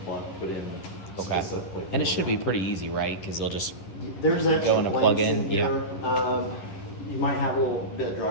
plug put in specifically. And it should be pretty easy, right? Because they'll just There's extra go in a plug blanks in. here. You might have a little bit of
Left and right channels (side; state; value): right; late; 11 ms